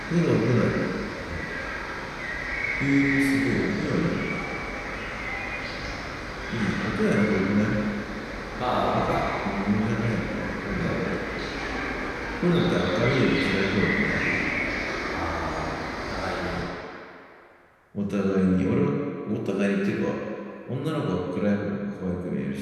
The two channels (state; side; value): identical; both; correlation 1.00